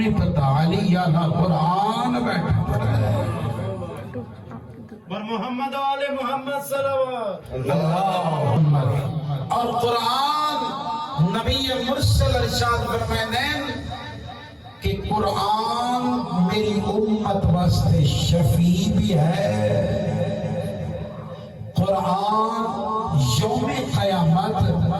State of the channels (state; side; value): identical; both; correlation 1.00